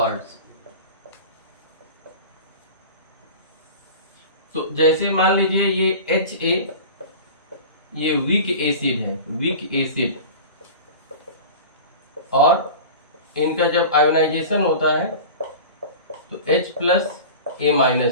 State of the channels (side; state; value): both; inverted; correlation -0.35